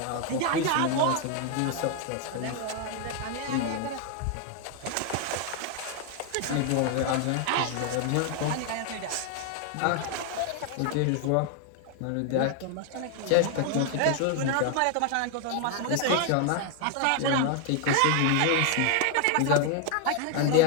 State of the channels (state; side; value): different; both; correlation 0.00